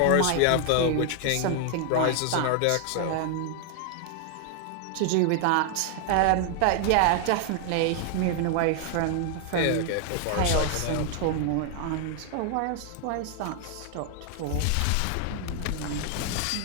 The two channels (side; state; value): both; different; correlation 0.00